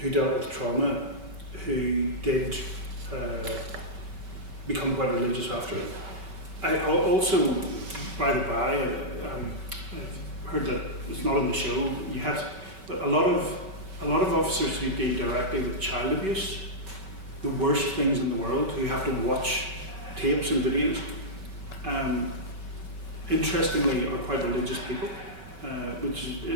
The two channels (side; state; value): left; late; 5.3 ms